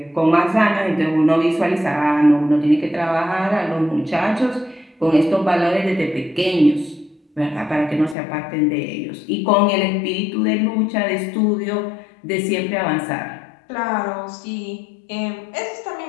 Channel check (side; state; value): right; drops out; at 8.2 s